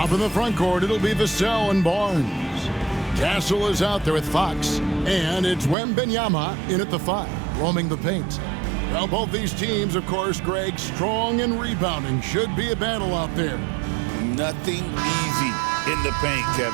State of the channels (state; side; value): drops out; left; at 5.8 s